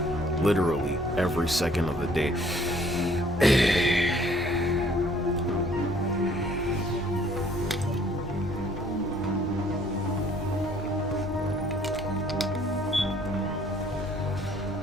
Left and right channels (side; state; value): both; normal; correlation 0.60